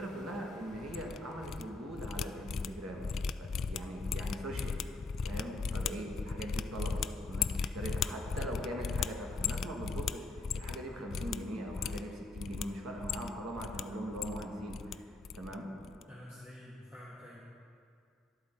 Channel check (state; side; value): quieter; right; 3.1 dB